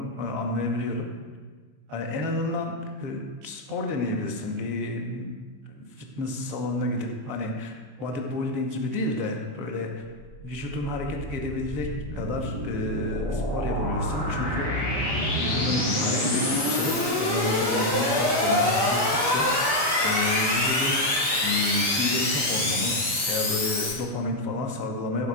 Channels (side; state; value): left; late; 33 ms